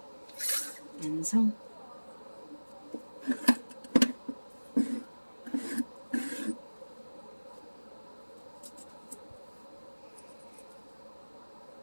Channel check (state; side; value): inverted; both; correlation -1.00